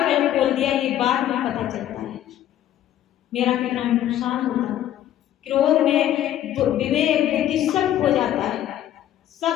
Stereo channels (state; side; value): quieter; right; 11.9 dB